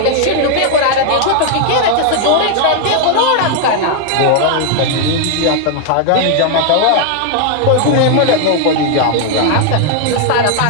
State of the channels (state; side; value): different; both; correlation 0.00